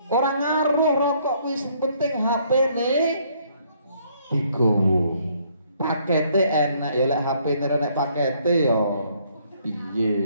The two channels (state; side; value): inverted; both; correlation -0.66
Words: Orang ngaruh rokok wis penting HP ne digowo. Pakete enak ya lek HP ne nek pakete ya